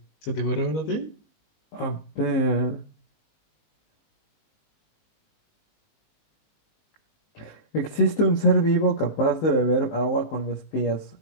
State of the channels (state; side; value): late; right; 19 ms